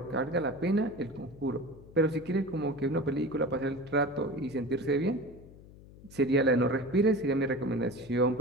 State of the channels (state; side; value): noise; left; hum, 20 dB below the sound